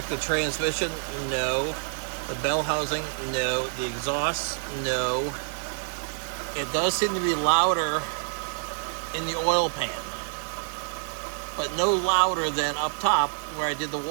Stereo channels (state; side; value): silent; left; digital silence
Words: the transmission, no. The bell housing, no. The exhaust, no. It does seem to be louder in the oil pan, but no louder than up top where I did the